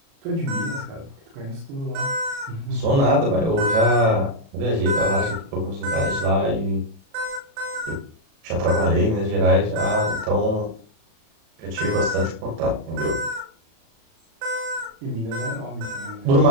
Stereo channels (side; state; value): left; late; 36 ms